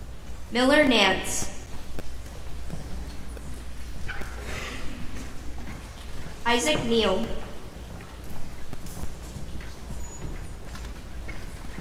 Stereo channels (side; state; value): both; identical; correlation 1.00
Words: Miller Nance. Isaac Neal.